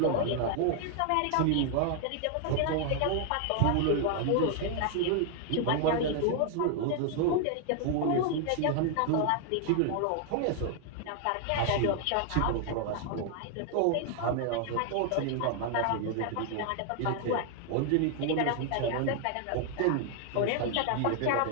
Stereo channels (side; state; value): both; different; correlation 0.00